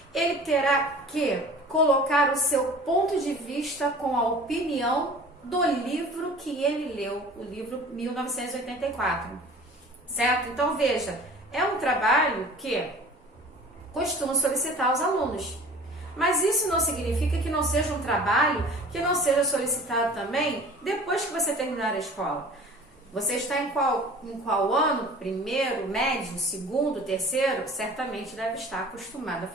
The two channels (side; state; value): both; normal; correlation 0.44